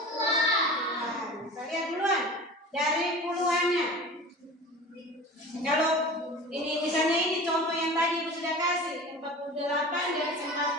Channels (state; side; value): normal; both; correlation 0.37